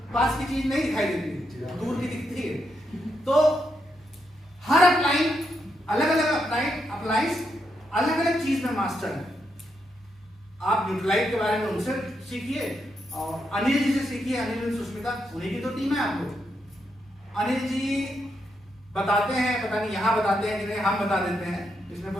पास की चीज नहीं दिखाई देती, दूर की दिखती है। तो हर अपलाइन अलग अलग अप्लाइंस अलग अलग चीज में मास्टर है। आप न्यूट्राइट के बारे में उनसे सीखिए, और अनिल जी से सीखिए। अनिल और सुष्मिता, उन्हीं की तो टीम है आपको। अनिल जी बताते हैं, पता नहीं यहाँ बताते हैं कि नहीं, हम बता देते हैं, इसमें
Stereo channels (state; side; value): normal; both; correlation 0.81